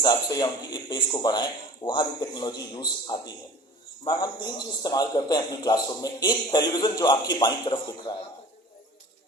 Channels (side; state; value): both; normal; correlation 0.42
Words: से या उनकी पेस को बढ़ाएं, वहां भी टेक्नोलॉजी यूज आती है। मैम हम 3 चीज इस्तेमाल करते हैं अपनी क्लासरूम में। एक टेलीविजन जो आपकी बाईं तरफ दिख रहा है,